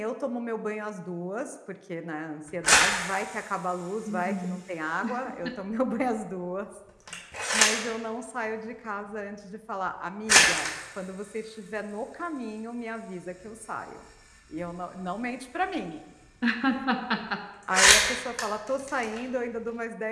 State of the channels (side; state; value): both; identical; correlation 1.00